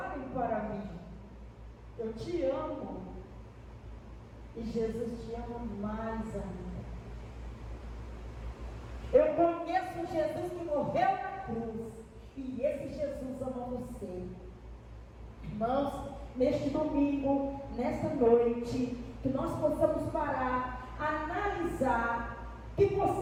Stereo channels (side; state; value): both; identical; correlation 1.00